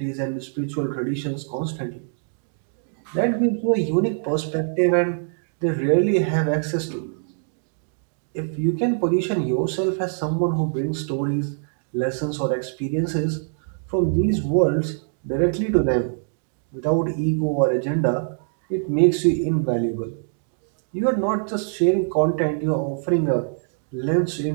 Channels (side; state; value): left; silent; digital silence